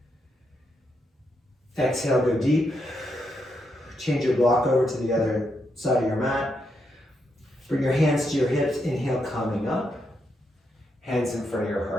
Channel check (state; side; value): normal; both; correlation 0.81